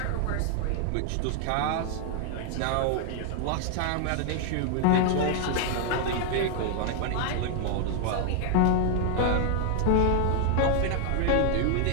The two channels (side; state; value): both; different; correlation 0.00